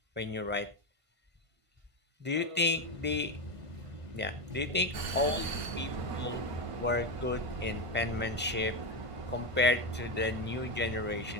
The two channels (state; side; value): late; left; 1.5 ms